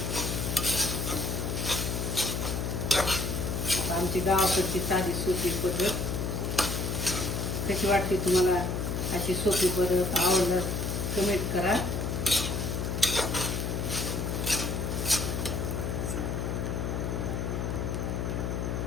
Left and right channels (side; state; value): left; noise; hum, 1 dB below the sound